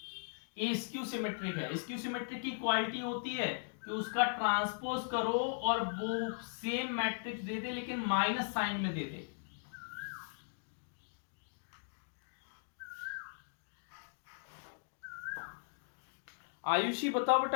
ए स्क्यू सिमेट्रिक है, स्क्यू सिमेट्रिक की क्वालिटी होती है कि उसका ट्रांसपोज करो और वो सेम मैट्रिक्स दे दे लेकिन माइनस साइन में दे दे। आयुषी बताओ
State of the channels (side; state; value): right; silent; digital silence